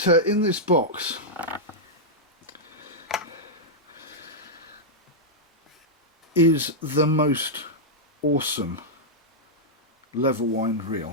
in this box is the most awesome level wind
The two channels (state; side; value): normal; both; correlation -0.07